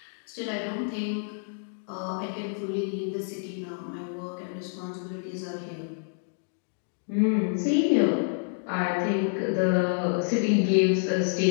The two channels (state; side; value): silent; right; digital silence